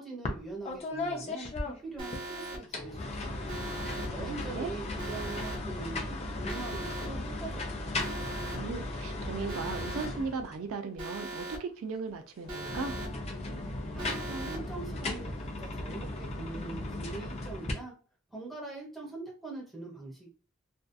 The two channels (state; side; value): normal; both; correlation 0.50